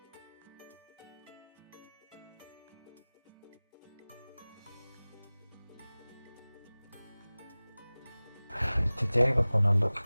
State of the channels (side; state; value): both; inverted; correlation -0.99